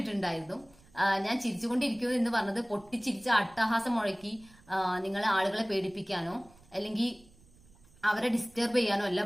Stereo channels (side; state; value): right; noise; rumble, 27 dB below the sound